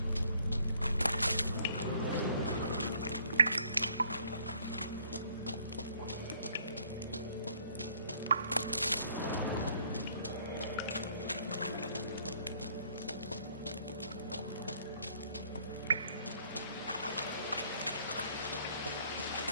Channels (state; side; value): inverted; both; correlation -0.63